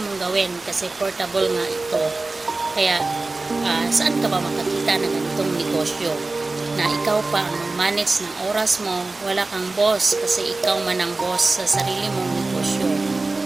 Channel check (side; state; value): left; quieter; 3.3 dB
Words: mong gawin kasi portable nga ito. Kaya saan ka ba makakita ng ganitong negosyo na ikaw pa ang manage ng oras mo, wala kang boss kasi ikaw man ang boss sa sarili mong negosyo.